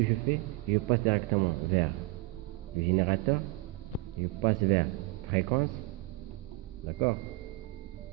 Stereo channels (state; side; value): quieter; left; 20.2 dB